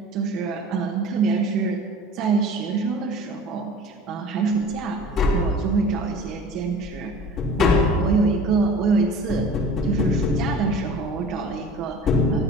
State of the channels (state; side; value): normal; both; correlation 0.42